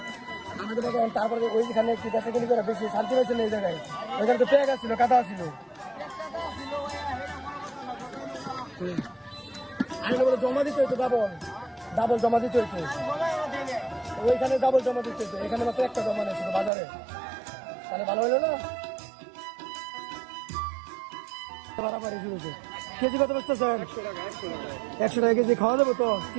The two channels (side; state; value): left; drops out; at 16.7 s